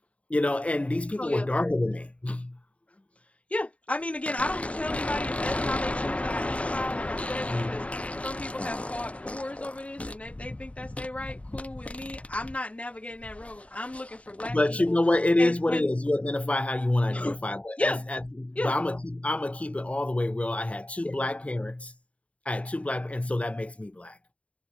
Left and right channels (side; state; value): right; late; 0.065 ms